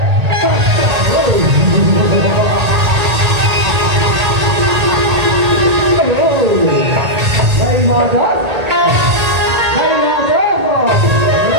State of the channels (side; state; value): left; late; 1.8 ms